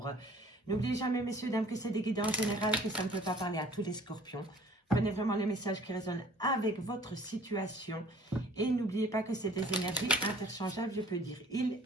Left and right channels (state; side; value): normal; both; correlation 0.52